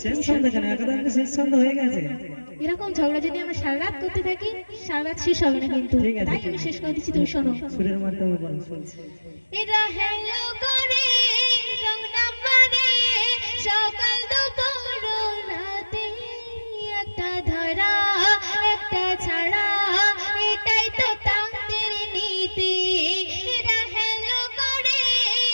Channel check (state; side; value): inverted; both; correlation -1.00